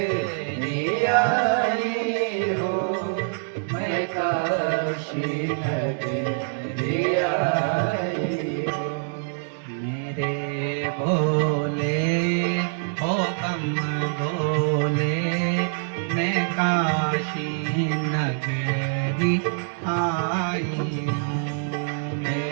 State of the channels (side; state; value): left; silent; 62 dB below the other